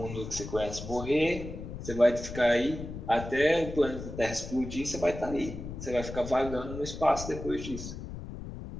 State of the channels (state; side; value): noise; left; rumble, 9 dB below the sound